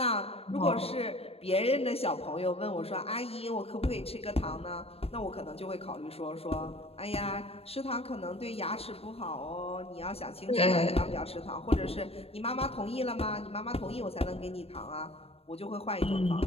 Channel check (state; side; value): late; right; 0.29 ms